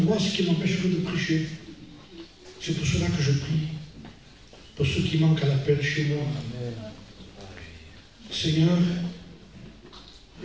qui m'empêcherait de prêcher. C'est pour cela que je prie. Pour ceux qui manquent à l'appel chez moi. Seigneur,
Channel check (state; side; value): identical; both; correlation 1.00